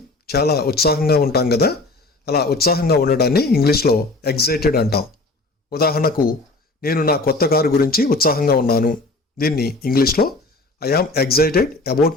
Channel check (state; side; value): quieter; right; 3.1 dB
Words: చాలా ఉత్సాహంగా ఉంటాం కదా. అలా ఉత్సాహంగా ఉండడాన్ని ఇంగ్లీష్లో ఎగ్జైటెడ్ అంటాం. ఉదాహరణకు నేను నా కొత్త కారు గురించి ఉత్సాహంగా ఉన్నాను. దీన్ని ఇంగ్లీష్లో I yam excited